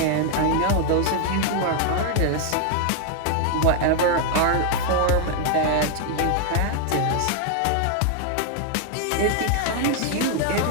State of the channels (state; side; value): different; both; correlation 0.00